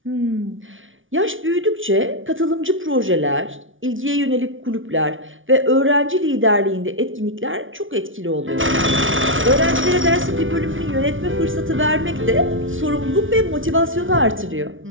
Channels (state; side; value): late; left; 0.57 ms